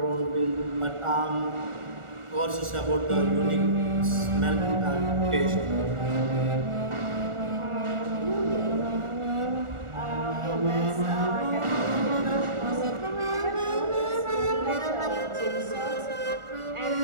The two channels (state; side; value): late; left; 1.4 ms